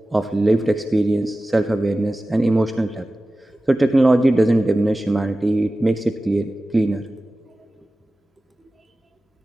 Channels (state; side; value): normal; both; correlation 0.96